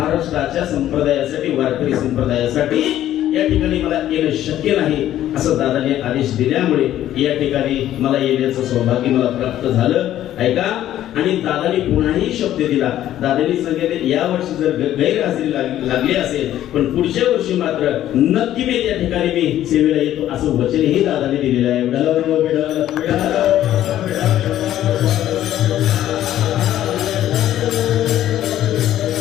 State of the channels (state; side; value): quieter; right; 12.5 dB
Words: संप्रदायासाठी, वारकरी संप्रदायासाठी या ठिकाणी मला येणं शक्य नाही असं दादाने आदेश दिल्यामुळे या ठिकाणी मला येण्याचं सौभाग्य मला प्राप्त झालं. ऐका, आणि दादाने पुन्हाही शब्द दिला. दादाने सांगितले या वर्षी जर गैरहजेरी लागली असेल पण पुढच्या वर्षी मात्र नक्की मी त्या ठिकाणी मी सेवेला येतो असं वचनही दादाने दिलेलं आहे.